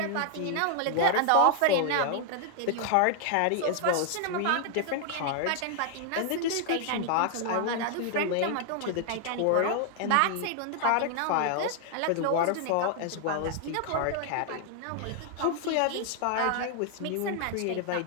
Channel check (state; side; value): different; both; correlation 0.00